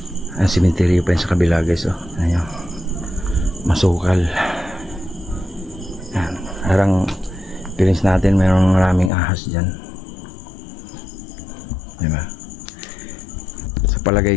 Ang simenteryo pa yun sa kabila guys, oh. Ayan, masukal. Ayan, harang feelings natin mayroong maraming ahas dyan, diba? Sa palagay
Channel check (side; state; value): right; drops out; at 9.1 s